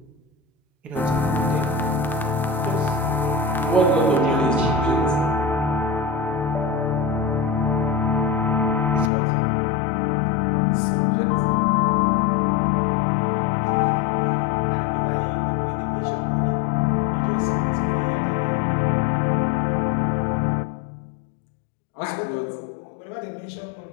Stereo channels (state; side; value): drops out; right; at 9.1 s